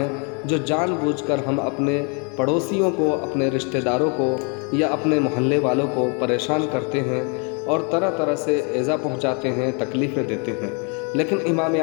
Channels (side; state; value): right; quieter; 35.9 dB